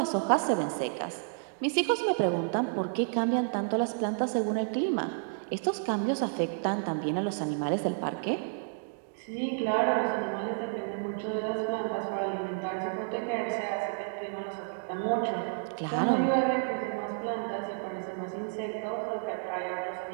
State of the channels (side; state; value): left; silent; digital silence